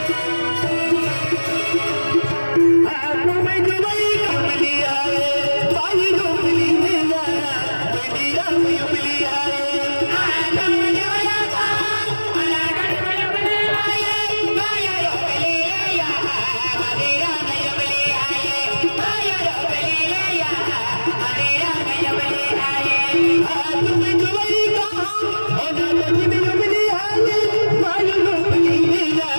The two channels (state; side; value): inverted; both; correlation -1.00